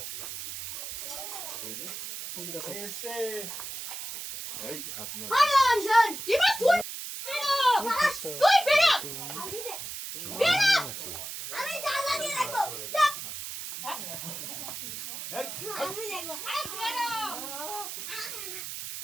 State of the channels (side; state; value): right; noise; hiss, 7 dB below the sound